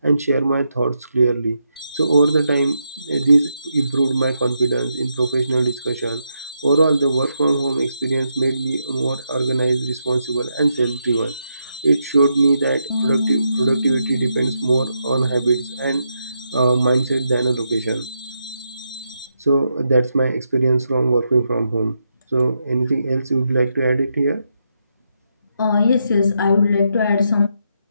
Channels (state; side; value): inverted; both; correlation -0.82